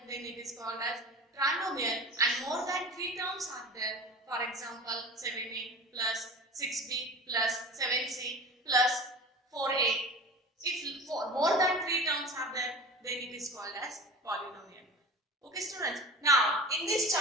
then it is called as trinomial, and more than three terms are there. For example, 7a plus 6b plus 7c plus 4a, if more than three terms are there, then it is called as polynomial. Okay students, now in this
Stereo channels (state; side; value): normal; both; correlation 0.35